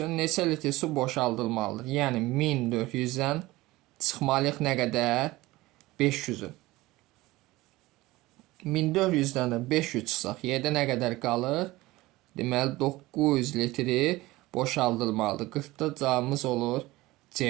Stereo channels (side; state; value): left; quieter; 19.2 dB